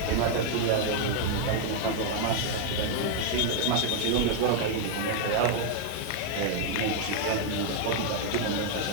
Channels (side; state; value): both; different; correlation 0.00